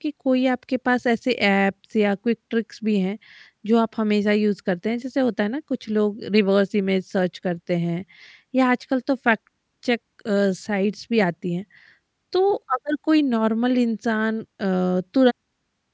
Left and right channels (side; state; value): both; identical; correlation 1.00